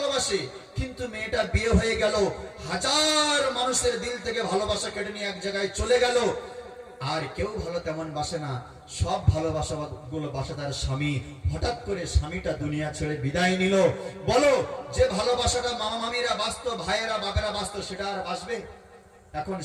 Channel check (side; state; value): both; identical; correlation 1.00